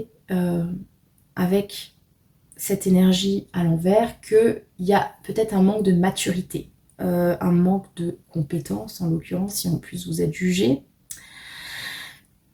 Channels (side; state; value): both; identical; correlation 1.00